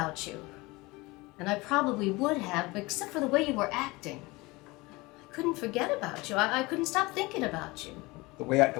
you. And I probably would have, except for the way you were acting. I couldn't forget about you. I couldn't stop thinking about you. The way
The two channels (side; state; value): right; quieter; 22.9 dB